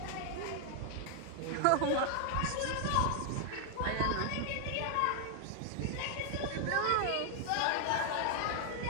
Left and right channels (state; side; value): different; both; correlation 0.00